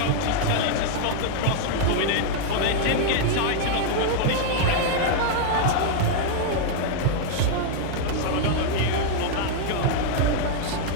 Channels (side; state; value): both; different; correlation 0.00